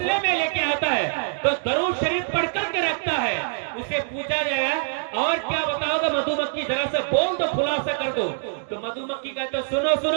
میں لے کے آتا ہے تو درود شریف پڑھ کر کے رکھتا ہے. اسے پوچھا جائے اور کیا بتاؤ گا مدھو مکھی، ذرا سے بول دو، خلاصہ کر دو. تو مدھو مکھی کہتے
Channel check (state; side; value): silent; left; digital silence